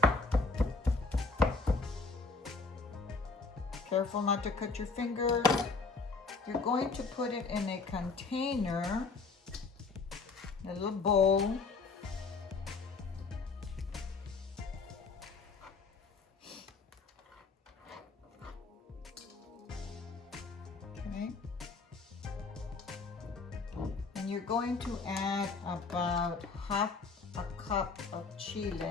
Careful not to cut your fingers. You're going to put it in a container, a little bowl. Okay. And you're going to add about half a cup of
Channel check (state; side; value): quieter; right; 4.2 dB